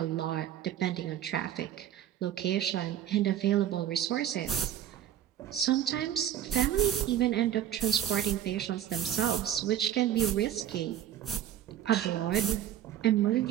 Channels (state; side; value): quieter; left; 10.9 dB